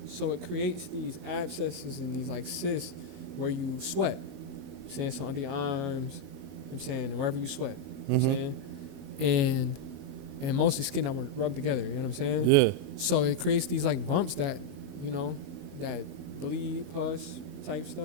So it creates these abscesses and these like cysts where you sweat. I'm saying so under your arms, I'm saying, and wherever you sweat. I'm saying. And mostly skin that were rubbed together, you know what I'm saying? Yeah. So it creates these like bumps that, you know, that bleed, pus type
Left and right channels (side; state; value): left; late; 22 ms